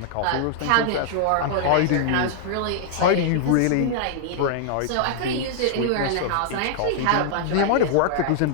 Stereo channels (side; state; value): both; different; correlation -0.01